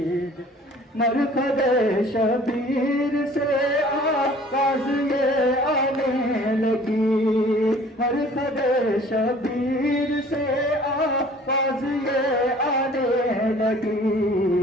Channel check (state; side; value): normal; both; correlation 0.51